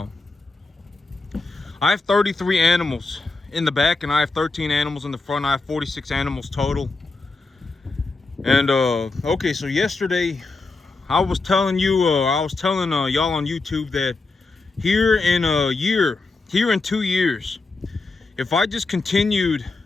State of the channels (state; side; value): quieter; right; 3.7 dB